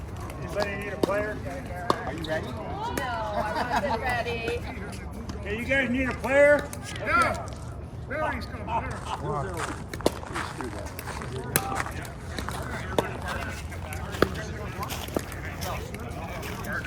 Anybody need a player? Are you ready? No, I wasn't ready. Hey, you guys need a player? Okay. Barry's coming.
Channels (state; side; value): identical; both; correlation 1.00